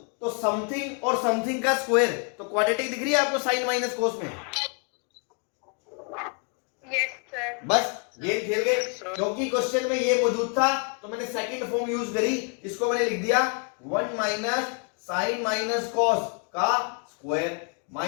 तो समथिंग और समथिंग का स्क्वायर, तो क्वाड्रेटिक दिख रही है आपको साइन माइनस कोस में? Yes sir. बस गेम खेल गए, क्योंकि क्वेश्चन में ये मौजूद था तो मैंने सेकंड फॉर्म यूज करी, इसको मैंने लिख दिया 1 माइनस साइन माइनस कॉस का square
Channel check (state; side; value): quieter; right; 39.5 dB